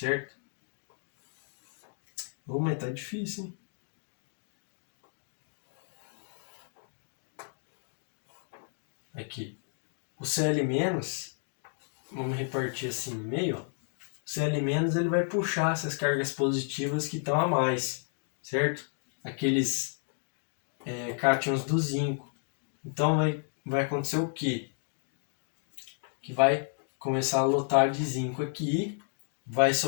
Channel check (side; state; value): right; silent; 56 dB below the other